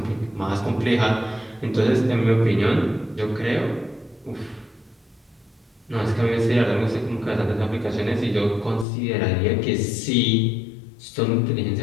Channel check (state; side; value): drops out; right; at 8.8 s